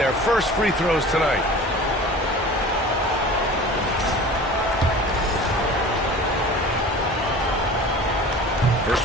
first free throws tonight.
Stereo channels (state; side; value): normal; both; correlation 0.40